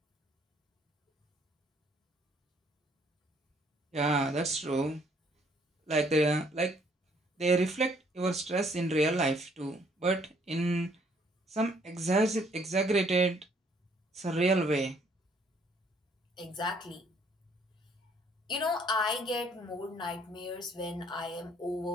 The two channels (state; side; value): normal; both; correlation 0.64